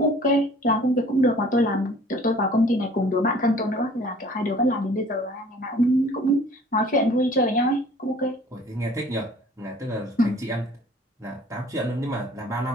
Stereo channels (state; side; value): normal; both; correlation 0.51